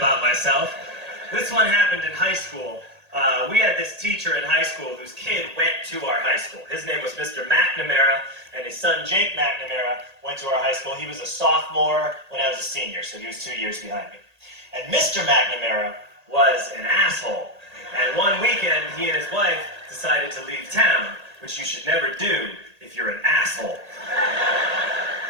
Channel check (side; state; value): left; late; 1.8 ms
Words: myself. This one happened in high school. We had this teacher in high school whose kid went to our high school. His name was Mr. McNamara, and his son Jake McNamara went to our high school. He was a sophomore when I was a senior, so he was 2 years behind me. And Mr. McNamara was an asshole. And one weekend, he and his wife decided to leave town, which you should never do if you're an asshole.